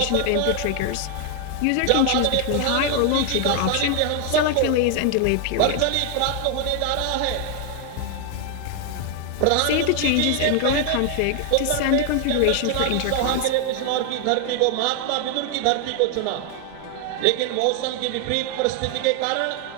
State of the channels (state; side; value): different; both; correlation 0.00